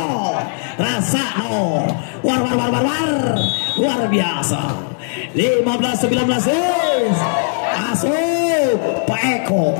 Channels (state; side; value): silent; right; 66 dB below the other